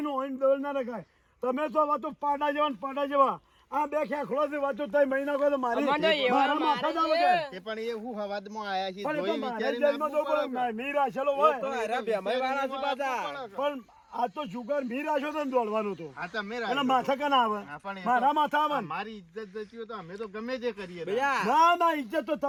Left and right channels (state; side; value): identical; both; correlation 1.00